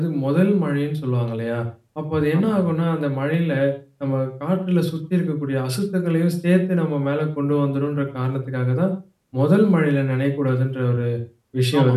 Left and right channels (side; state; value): both; identical; correlation 1.00